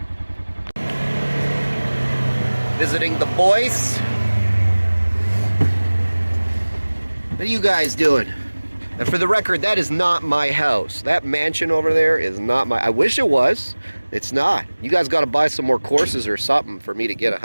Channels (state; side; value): inverted; both; correlation -1.00